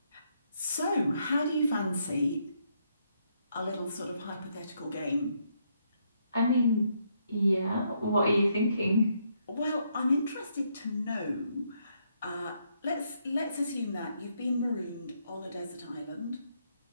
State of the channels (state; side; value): inverted; both; correlation -0.75